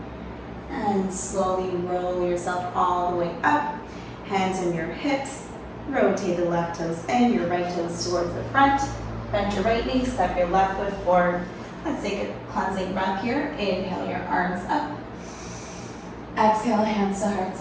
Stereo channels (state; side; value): identical; both; correlation 1.00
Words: And slowly roll yourself all the way up. Hands on your hips. Rotate the left toes in, your right toes towards the front. Bend your right knee, step your left foot forward. Let's take a cleansing breath here. Inhale your arms up. Exhale, hands to heart